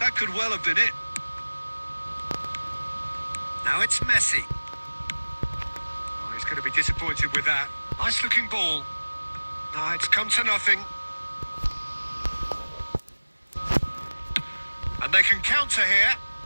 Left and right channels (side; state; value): both; inverted; correlation -1.00